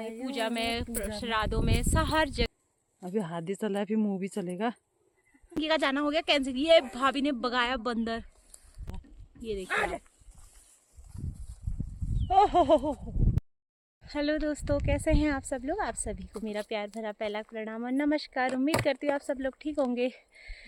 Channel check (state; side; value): identical; both; correlation 1.00